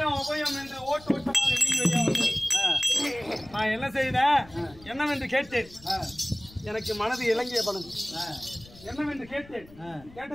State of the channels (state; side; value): noise; left; rumble, 22 dB below the sound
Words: அபயம் என்று ஓட்டு ஓட்டமாக வீழ்வையாவது. நான் என்ன செய்தேன்? என்னவென்று கேட்டேன். எனக்கு மனது இலங்கிய பணம் என்னவென்று கேட்டேன்.